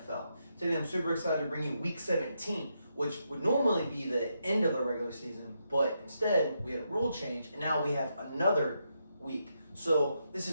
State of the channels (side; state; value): both; inverted; correlation -0.82